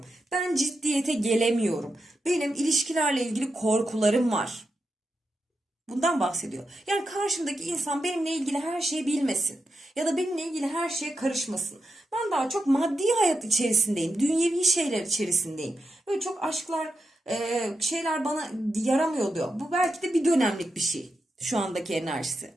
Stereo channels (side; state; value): both; normal; correlation 0.87